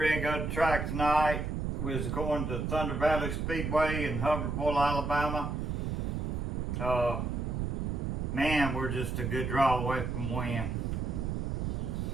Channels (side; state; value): right; noise; rumble, 1 dB below the sound